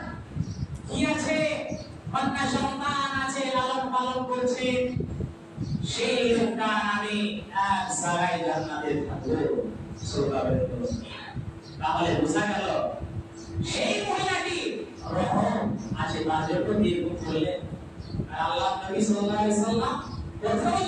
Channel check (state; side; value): identical; both; correlation 1.00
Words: কি আছে, কন্যা সন্তান আছে, লালন পালন করছে, সেই লোকটা আমি এক জায়গায় জান্নাতে থাকবো। সুবহানাল্লাহ। তাহলে বোঝা গেল সেই মহিলাটি রহম আছে, তার জন্য নির্ভর করলেন। আর আল্লাহ নবী সাল্লাল্লাহু আলাইহি সাল্লাম প্রথমে